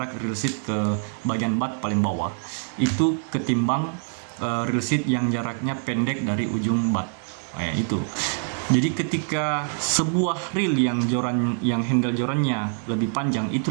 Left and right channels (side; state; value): left; silent; 57 dB below the other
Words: reel seat ke bagian bat paling bawah, itu ketimbang reel seat yang jaraknya pendek dari ujung bat. Itu. Jadi ketika sebuah reel yang handle jorannya lebih panjang, itu